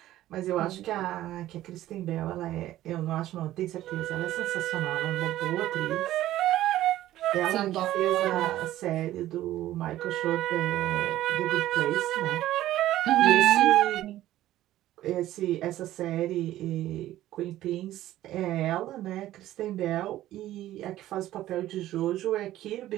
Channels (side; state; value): left; quieter; 14.2 dB